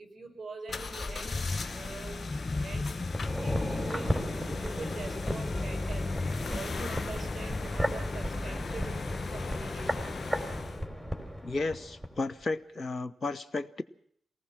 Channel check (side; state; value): both; normal; correlation 0.94